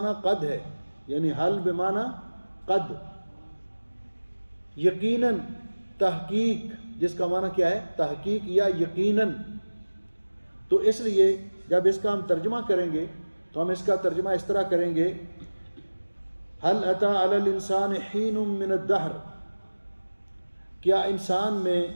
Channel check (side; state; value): both; inverted; correlation -1.00